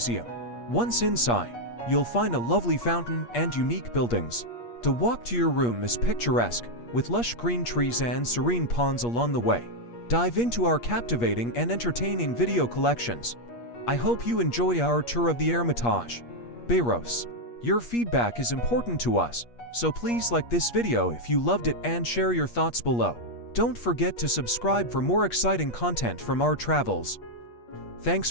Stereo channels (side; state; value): right; late; 8.4 ms